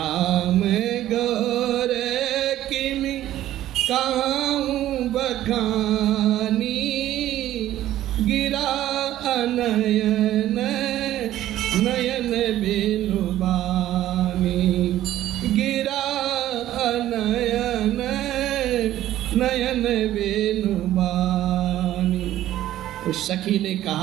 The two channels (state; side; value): quieter; left; 13.4 dB